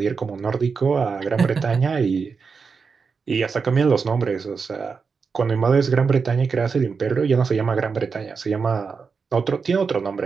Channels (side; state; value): left; quieter; 5.3 dB